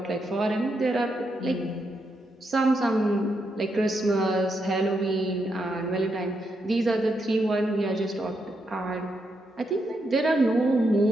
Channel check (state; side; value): normal; both; correlation 0.81